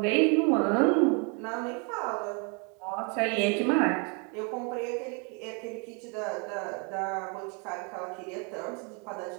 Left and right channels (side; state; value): left; quieter; 34.5 dB